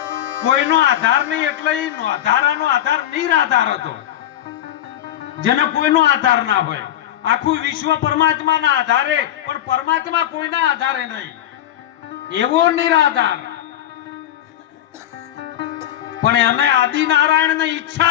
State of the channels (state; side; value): quieter; right; 12.0 dB